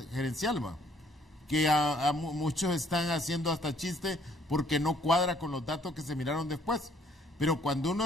Gerencial, que a muchos están haciendo hasta chiste porque no cuadra con los datos que se miraron después. Pero cuando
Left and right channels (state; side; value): normal; both; correlation 0.63